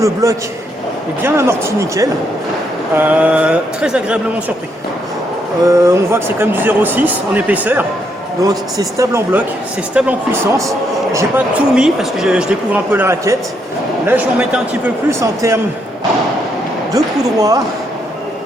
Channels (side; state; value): both; normal; correlation 0.76